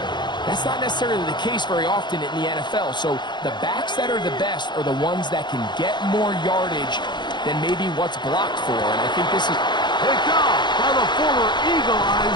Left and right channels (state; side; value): late; right; 0.22 ms